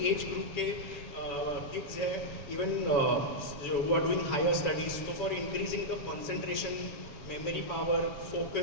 एज ग्रुप के किड्स है, इवन जो who are doing higher studies, तो for increasing the concentration, memory power,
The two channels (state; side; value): late; right; 7.0 ms